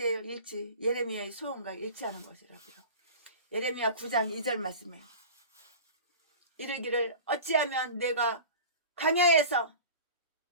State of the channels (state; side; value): inverted; both; correlation -0.37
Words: 예레미야의 소원과 일치하는 것이라고요. 예레미야 9장 2절 말씀에 이르기를 어찌하면 내가 광야에서